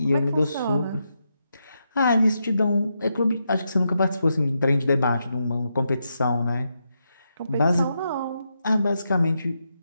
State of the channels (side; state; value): both; inverted; correlation -0.84